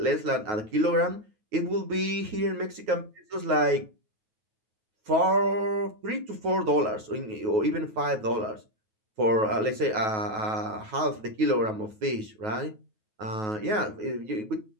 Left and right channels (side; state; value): left; late; 9.3 ms